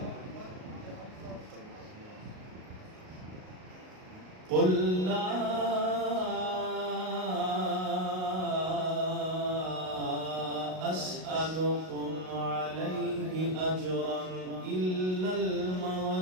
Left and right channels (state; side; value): late; left; 38 ms